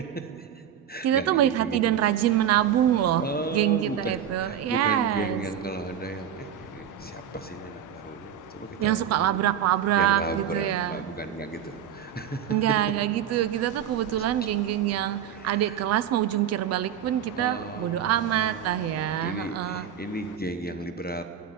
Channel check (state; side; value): quieter; left; 9.3 dB